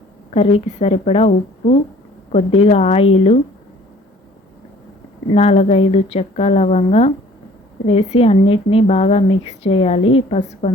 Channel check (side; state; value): both; normal; correlation 0.53